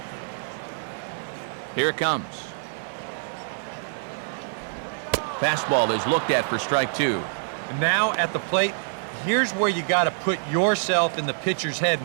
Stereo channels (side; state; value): left; silent; 61 dB below the other